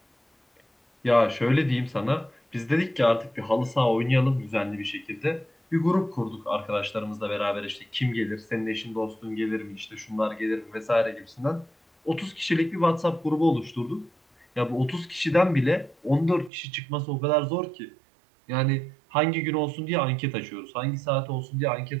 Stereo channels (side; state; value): left; drops out; at 16.5 s